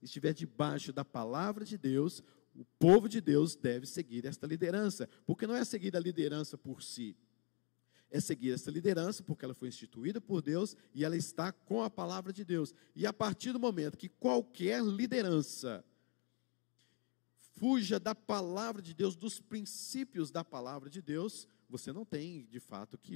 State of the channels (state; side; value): quieter; right; 32.0 dB